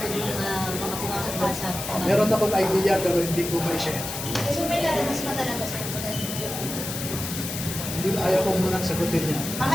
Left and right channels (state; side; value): noise; left; hiss, 6 dB below the sound